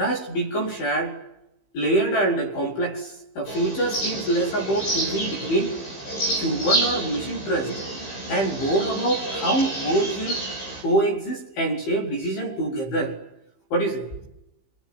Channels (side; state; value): right; late; 15 ms